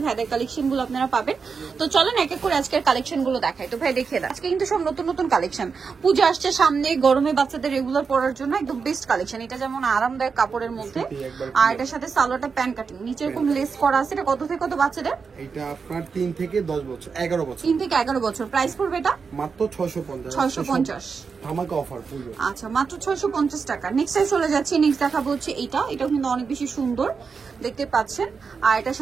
ভাইদের কালেকশনগুলো আপনারা পাবেন। তো চলেন এক এক করে আজকের কালেকশনগুলো দেখাই। তো ভাই দেখিয়ে দেন, আজকে কিন্তু সব নতুন নতুন কালেকশন। পূজা আসছে সামনে, গরমে বাচ্চাদের রেগুলার পরার জন্য একদম বেস্ট কালেকশন। এটা যেমন আরামদায়ক কাপড়ের মধ্যে, আর এটার সাথে সালোয়ারটা প্যান্ট কাটিং, নিচে এরকম লেস করা আছে। এটা কত থেকে কত বাচ্চাদের? এটা আপনার 3 থেকে 10 বছর 11 বছর 3 থেকে 11 বছর। প্রাইস পড়বে এটা মাত্র 650 650। ধামাকা অফার পুরো। আচ্ছা, মাত্র 650 টাকা। নেক্সট চলে যাচ্ছি, নেক্সট দেখাবো হচ্ছে এটাও কিন্তু অনেক বেশি সুন্দর দেখতে পাচ্ছেন। আর এটার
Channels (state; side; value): quieter; left; 5.4 dB